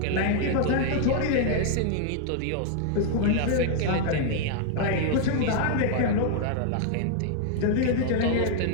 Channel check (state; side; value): different; both; correlation 0.00